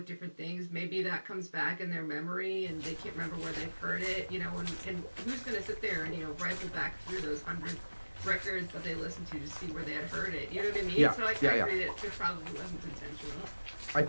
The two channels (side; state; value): both; inverted; correlation -1.00